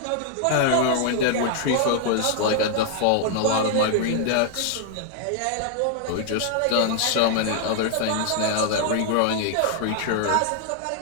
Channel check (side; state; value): both; different; correlation -0.01